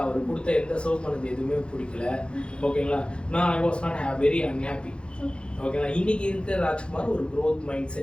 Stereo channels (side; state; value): right; late; 0.055 ms